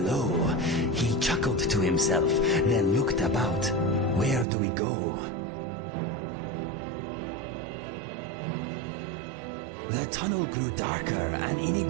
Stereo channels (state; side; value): drops out; left; at 4.5 s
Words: He chuckled to himself, then looked about. Where do we go? The tunnel grew darker, and